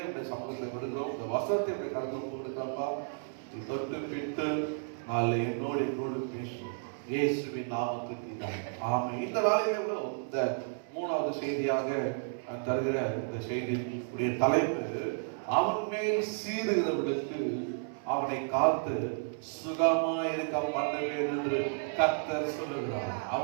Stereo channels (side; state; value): left; silent; 56 dB below the other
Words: உடைய சமூகத்தை கொடுக்கிறோம். இந்த வசனத்தை உடைய கருத்தில் கொடுக்கிறப்பா, தொட்டு பிட்டு நாளை என்னோடு பேசும் இயேசுவின் நாமத்தில் ஆமென். இந்த நாளிலே இந்த மூணாவது செய்தியாக தருகிற இந்த செய்தியுடைய தலைப்பு, அவன் மேல் சீறுகிறவர்களுக்கு அவனை காத்து சுகமாயிருக்க பண்ணுவேன் என்று கர்த்தர் சொல்லுகிறார்.